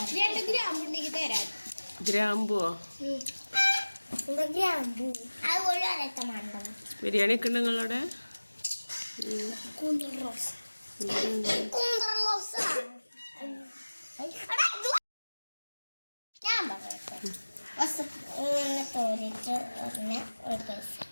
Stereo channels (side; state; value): both; inverted; correlation -1.00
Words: 2 ഗ്രാം ഉണ്ടെങ്കിൽ തരാം. ഗ്രാമ്പുവോ? ഗ്രാമ്പു. അതുപോലെ ബിരിയാണി ഒക്കെ ഉണ്ട് നിങ്ങളുടെ? കൂന്തൽ റോസ്. ഞാൻ പറയട്ടെ ഇങ്ങനെ തോന്നിട്ട്